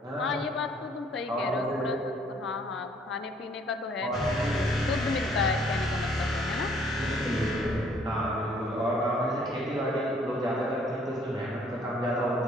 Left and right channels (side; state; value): both; normal; correlation 0.61